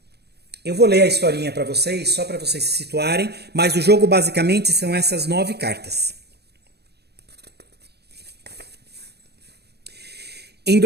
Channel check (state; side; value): late; left; 0.48 ms